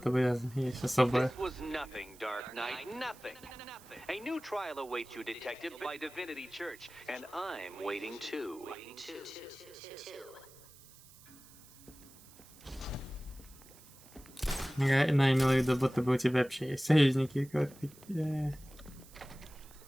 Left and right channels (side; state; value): right; noise; hiss, 22 dB below the sound